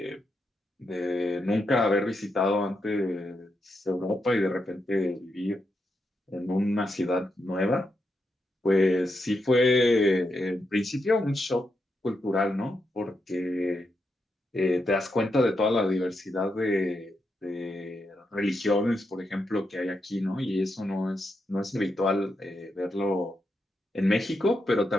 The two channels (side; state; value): both; normal; correlation 0.83